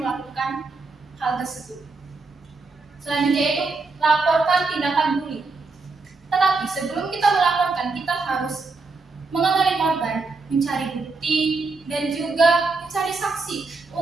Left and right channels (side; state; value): left; quieter; 3.9 dB